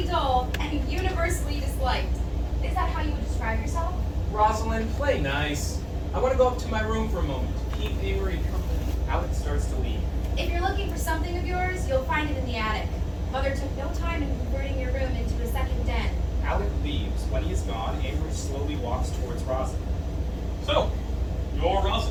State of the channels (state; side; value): identical; both; correlation 1.00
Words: dull and universally disliked. Is that how you would describe yourself? Rosalind, play nice. I want to go up to my room for a moment to keep Amory company. Alec starts to leave. If you're looking for something of yours, you'll find it in the attic. Mother took no time in converting your room into a second den. Alec leaves. When he is gone, Amory slowly walks towards Rosalind. So, you're